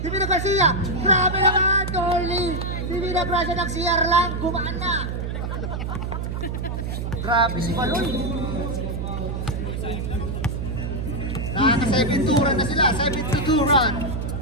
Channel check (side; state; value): right; noise; hum, 3 dB below the sound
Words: Divina Garcia. Grabe naman, Orly. Divina Garcia ng CR lang. Gumaan na. Grabe si Maloy. Nakaka-7-2 run na sila. 7-2 run.